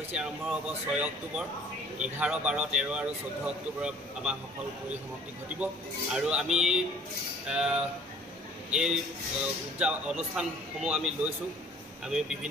আৰম্ভ হ'ব 6 অক্টোবৰ, 11, 12, 13 আৰু 14 অক্টোবৰত আমাৰ সফল পৰিসমাপ্তি ঘটিব। আৰু আমি এই অনুষ্ঠানসমূহ আমি লৈছোঁ। আমি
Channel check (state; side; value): normal; both; correlation 0.52